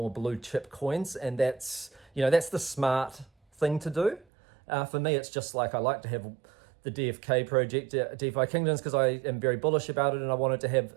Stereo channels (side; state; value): left; drops out; at 4.2 s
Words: blue chip coins, and that's, you know, that's the smart thing to do. For me, it's just like, I like to have the DFK project, DeFi Kingdoms, because I am very bullish about it, and I wanted to have